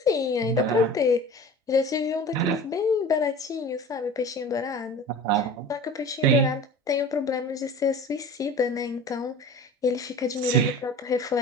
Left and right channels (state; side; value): normal; both; correlation 0.38